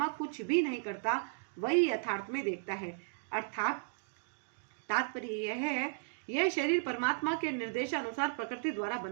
कुछ भी नहीं करता वही यथार्थ में देखता है। अर्थात तात्पर्य यह है, यह शरीर परमात्मा के निर्देशानुसार प्रकृति द्वारा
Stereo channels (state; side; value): silent; left; digital silence